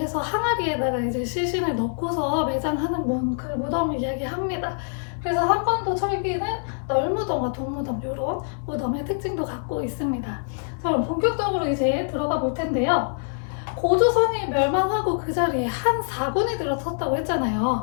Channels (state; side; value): silent; right; digital silence